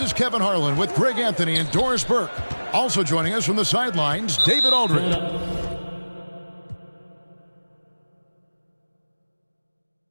is Kevin Harlan with Greg Anthony and Doris Burke. Also joining us from the sidelines, David Aldridge.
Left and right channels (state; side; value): inverted; both; correlation -1.00